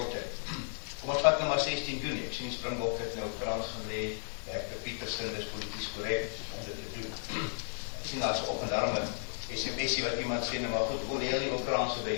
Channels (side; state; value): right; silent; 55 dB below the other